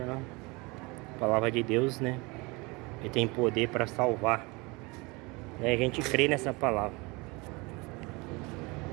né? A palavra de Deus, né? Ele tem poder para salvar. E a gente crê nessa palavra.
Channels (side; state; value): left; quieter; 26.0 dB